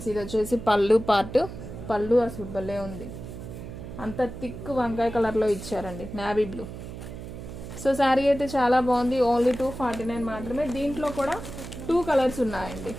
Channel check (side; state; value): right; noise; hum, 11 dB below the sound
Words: ఇది వచ్చేసి పళ్ళు పార్ట్. పళ్ళు అసలు భలే ఉంది, అంత థిక్ వంకాయ కలర్లో ఇచ్చారండి, నావీ బ్లూ. సో శారీ అయితే చాలా బాగుంది. ఓన్లీ 249 మాత్రమే. దీంట్లో కూడా 2 కలర్స్ ఉన్నాయండి.